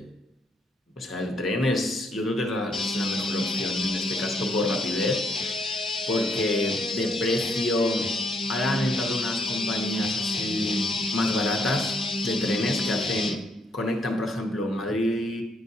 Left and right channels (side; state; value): both; normal; correlation 0.71